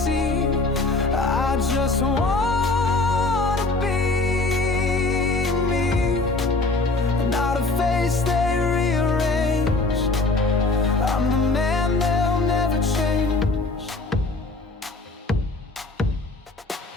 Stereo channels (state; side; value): quieter; right; 3.3 dB